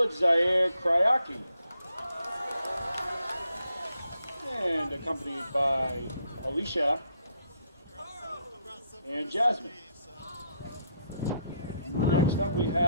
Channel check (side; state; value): both; inverted; correlation -0.74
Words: Zaire Kryaki, and accompanied by Alicia and Jasmine. Next up, we